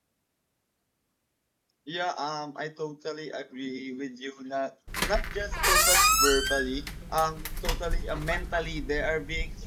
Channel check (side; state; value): both; identical; correlation 1.00